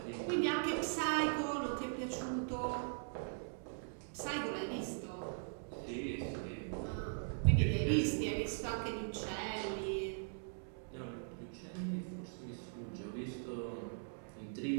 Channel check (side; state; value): left; silent; digital silence